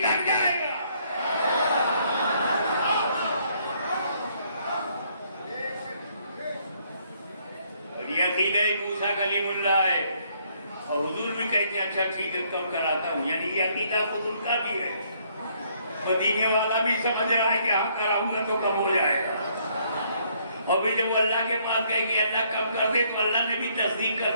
کر جائے گا. اور یہ عقیدہ موسیٰ کلیم اللہ ہے. اور حضور بھی کہتے ہیں اچھا ٹھیک ہے کم کراتا ہوں. یعنی یہ عقیدہ خود ان کا بھی ہے. مدینے والا بھی سمجھ رہا ہے کہ ہاں کراؤں گا تو کم ہو جائے گا. اور بھی جب وہ اللہ کے پاس گئے کہ اللہ کم کر دے تو اللہ نے بھی تصدیق کر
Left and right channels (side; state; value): both; inverted; correlation -0.68